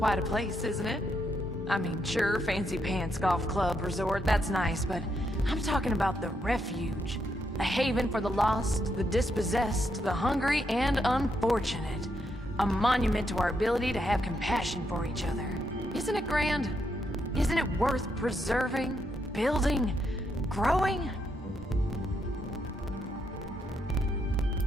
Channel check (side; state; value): both; normal; correlation 0.79